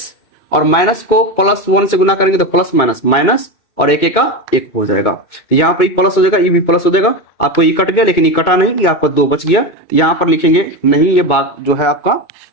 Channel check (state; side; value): late; right; 2.2 ms